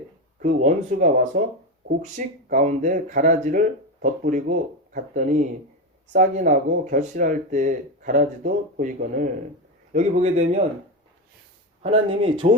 그 원수가 와서 곡식 가운데 가라지를 덧뿌리고 갔더니 싹이 나고 결실할 때 가라지도 보이거늘. 여기 보게 되면 하나님이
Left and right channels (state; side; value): normal; both; correlation 0.14